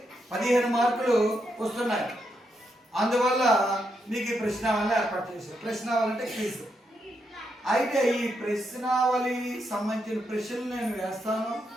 15 మార్కులు వస్తున్నాయి. అందువల్ల మీకు ఈ ప్రశ్నావళిని ఏర్పాటు చేశారు. ప్రశ్నావళి అంటే క్విజ్. అయితే ఈ ప్రశ్నావళి సంబంధించిన ప్రశ్నలు నేను వేస్తాను.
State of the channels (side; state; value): both; normal; correlation 0.81